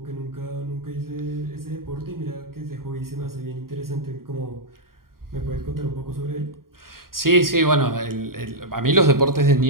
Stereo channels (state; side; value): late; left; 0.92 ms